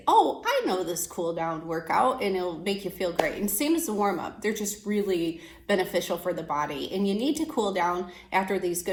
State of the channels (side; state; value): both; identical; correlation 1.00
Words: oh, I know this cool down workout, and it'll make you feel great. And same as the warm up, they're just really beneficial for the body. And you need to cool down after these